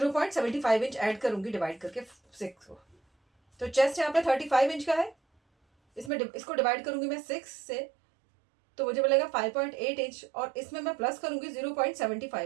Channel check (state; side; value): drops out; left; at 6.1 s